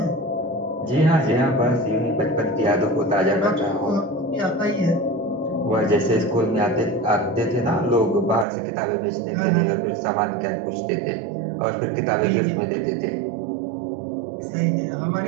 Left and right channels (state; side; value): drops out; left; at 8.5 s